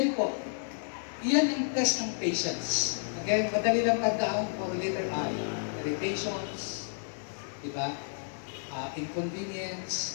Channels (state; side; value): silent; right; digital silence